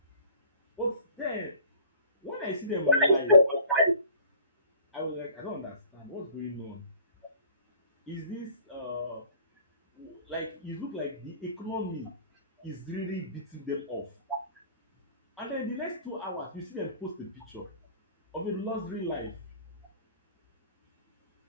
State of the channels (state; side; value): inverted; both; correlation -0.49